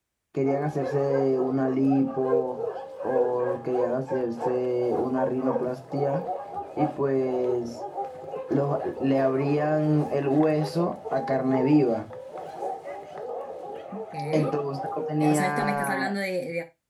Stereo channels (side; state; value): both; identical; correlation 1.00